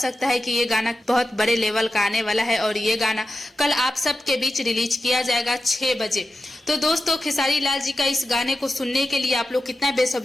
है कि ये गाना बहुत बड़े लेवल का आने वाला है और ये गाना कल आप सबके बीच रिलीज किया जाएगा 6 बजे। तो दोस्तों, खेसारी लाल जी का इस गाने को सुनने के लिए आप लोग कितना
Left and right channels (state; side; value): normal; both; correlation 0.91